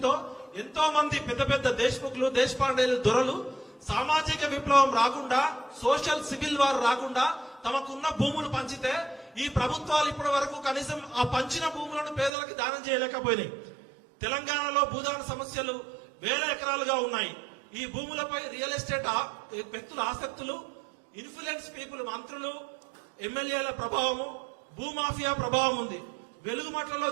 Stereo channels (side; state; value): left; drops out; at 12.3 s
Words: ఎంతో మంది పెద్ద పెద్ద దేశ్ముఖులు, దేశపాండేలు, దొరలు సామాజిక విప్లవం రాకుండా, సోషల్ సివిల్ వార్ రాకుండా తమకున్న భూములు పంచితే ఈ ప్రభుత్వాలు ఇప్పటి వరకు కనీసం ఆ పంచిన భూములను పేదలకు దానం చేయలేకపోయినాయి. తెలంగాణలో భూదాన సమస్యలు 1000 ఎకరాలుగా ఉన్నాయి. ఈ భూములపై రియల్ ఎస్టేట్ వ్యక్తుల ఆసక్తులు, ఇన్ఫ్లుయెన్స్ పీపుల్, మంత్రులు, ఎమ్మెల్యేల ప్రభావము, భూమాఫియా ప్రభావం ఉంది. వెలుగుమట్లలో